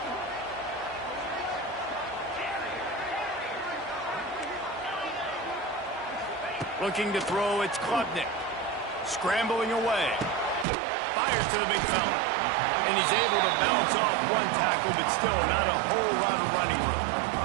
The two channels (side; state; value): left; drops out; at 10.7 s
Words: Looking to throw, it's Klubnik. Scrambling away. Fires to the big fella. And he's able to bounce off one tackle, but still not a whole lot of running room.